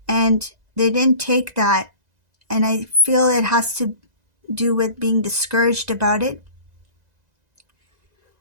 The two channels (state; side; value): late; left; 2.0 ms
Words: and they didn't take that. And I feel it has to do with being discouraged about it.